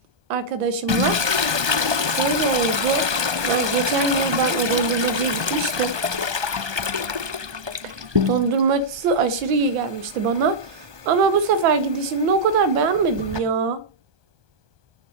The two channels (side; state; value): left; late; 1.2 ms